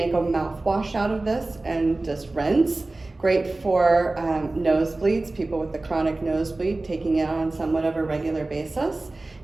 a mouthwash out of this and just rinse. Great for nosebleeds, people with the chronic nosebleed, taking it on somewhat of a regular basis.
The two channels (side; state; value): left; quieter; 3.0 dB